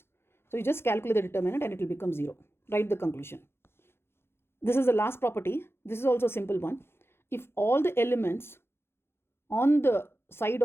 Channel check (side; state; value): right; late; 0.12 ms